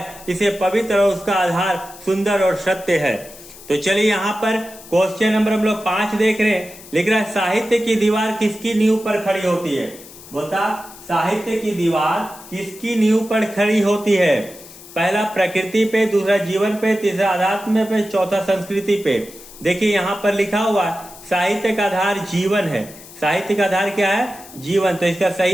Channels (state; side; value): noise; left; hiss, 18 dB below the sound